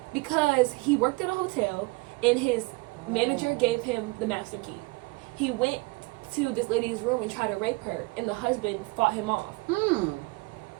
because he worked at a hotel, and his manager gave him the master key. He went to this lady's room and tried to rape her, and the husband fought him off.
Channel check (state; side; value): quieter; left; 25.5 dB